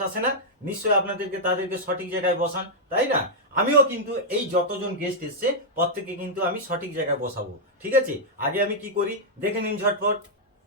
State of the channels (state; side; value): normal; both; correlation -0.06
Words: আসে না, নিশ্চয়ই তাদেরকে সঠিক জায়গায় বসান, তাই না? আমিও কিন্তু এই যতজন গেস্ট এসছে প্রত্যেককে কিন্তু আমি সঠিক জায়গায় বসাবো, ঠিক আছে? আগে আমি কি করি দেখে নিন ঝটপট।